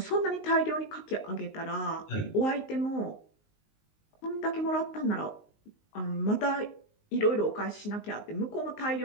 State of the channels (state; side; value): late; right; 19 ms